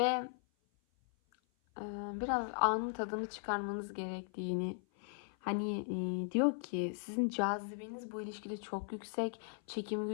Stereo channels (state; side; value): silent; right; 52 dB below the other